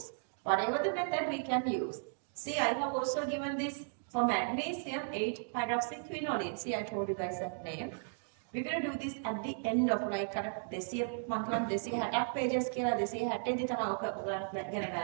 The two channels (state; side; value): silent; left; digital silence